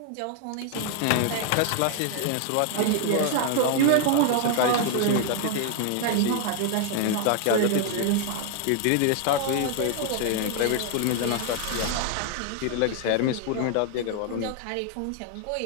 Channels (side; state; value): both; different; correlation 0.00